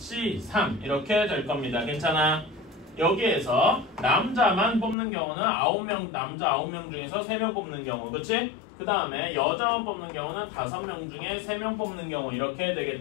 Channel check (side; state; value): right; drops out; at 5.0 s